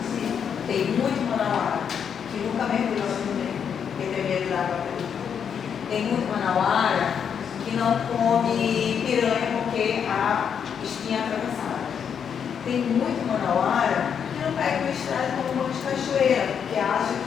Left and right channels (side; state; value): right; quieter; 7.5 dB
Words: Tem muito manauara que não come piranha porque a espinha é atravessada. Tem muito manauara que não pega uma estrada como um monte de cachoeira, porque acha